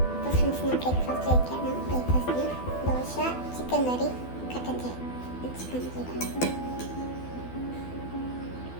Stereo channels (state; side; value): late; right; 12 ms